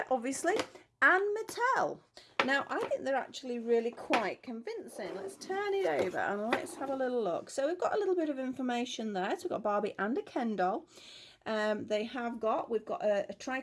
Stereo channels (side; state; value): both; identical; correlation 1.00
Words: obviously. And Mattel. Now, I think they're actually really quite convincing. Let's turn it over and let's have a little look. So we've got a little bit of information there. So we've got Barbie and a Ken doll. We've got a